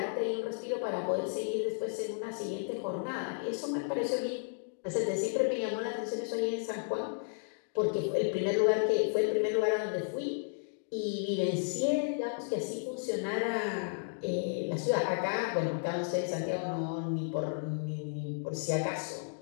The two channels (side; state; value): right; silent; digital silence